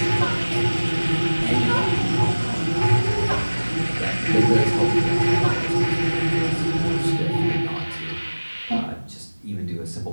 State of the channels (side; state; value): both; inverted; correlation -1.00